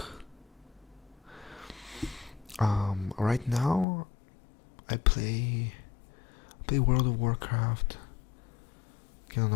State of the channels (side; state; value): right; drops out; at 3.9 s